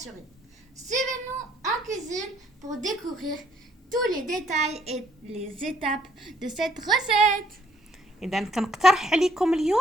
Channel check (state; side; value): normal; both; correlation 0.65